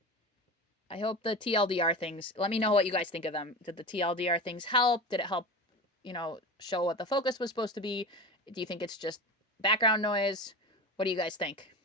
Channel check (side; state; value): both; normal; correlation 0.27